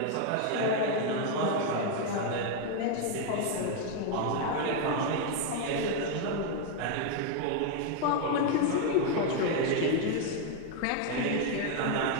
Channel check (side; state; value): both; different; correlation 0.01